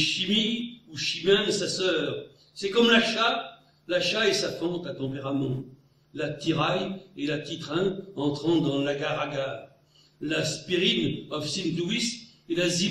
ou Chimène, sa sœur. C'est comme l'achat et sa fente à tempérament. La tiraille et la titrin entrant dans l'agar-agar. La spirine of Saint-Louis et la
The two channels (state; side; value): identical; both; correlation 1.00